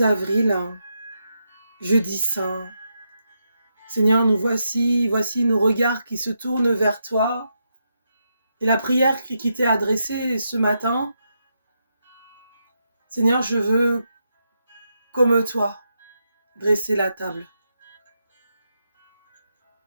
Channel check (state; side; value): inverted; both; correlation -0.83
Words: avril, jeudi saint. Seigneur, nous voici nos regards qui se tournent vers toi. Et la prière qui t'est adressée ce matin, Seigneur, je veux, comme toi, dresser la table,